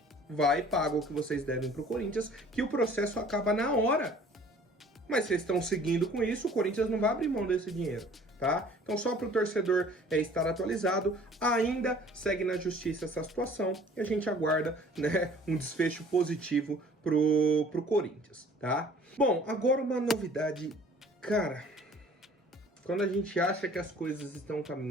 vai, paga o que vocês devem para o Corinthians, que o processo acaba na hora. Mas vocês estão seguindo com isso, o Corinthians não vai abrir mão desse dinheiro, tá? Então, só para o torcedor estar atualizado, ainda segue na justiça essa situação e a gente aguarda, né, um desfecho positivo pro Corinthians, tá? Bom, agora uma novidade, cara. Quando a gente acha que as coisas estão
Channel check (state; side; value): normal; both; correlation 0.51